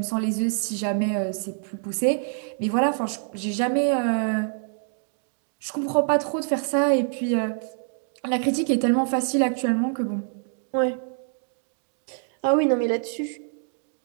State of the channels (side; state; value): left; silent; 61 dB below the other